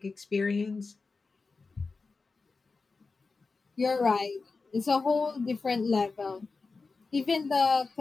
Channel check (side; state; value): right; quieter; 4.2 dB